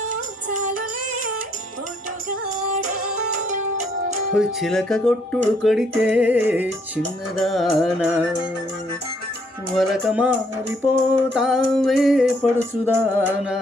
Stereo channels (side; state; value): both; normal; correlation 0.68